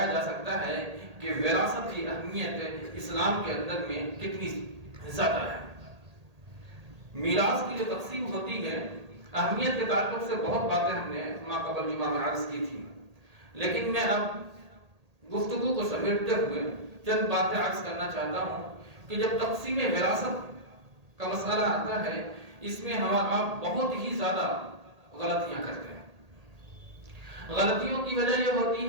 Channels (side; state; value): left; late; 1.8 ms